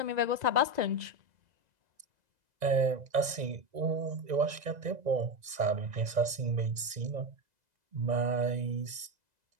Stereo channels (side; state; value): left; late; 2.0 ms